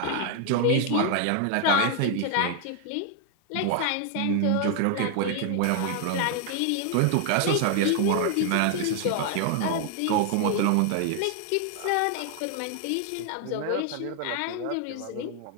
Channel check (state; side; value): different; both; correlation 0.00